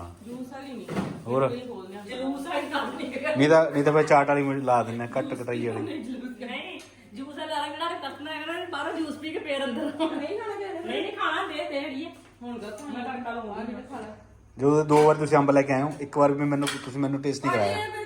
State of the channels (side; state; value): both; identical; correlation 1.00